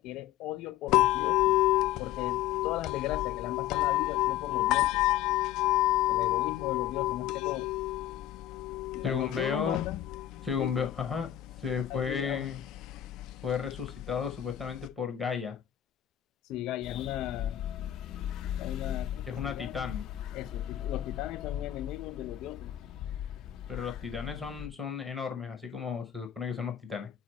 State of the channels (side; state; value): right; quieter; 12.0 dB